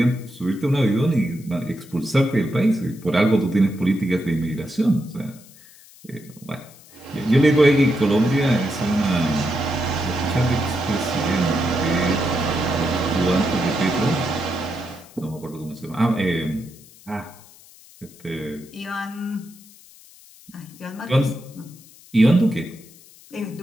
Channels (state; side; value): noise; left; hiss, 23 dB below the sound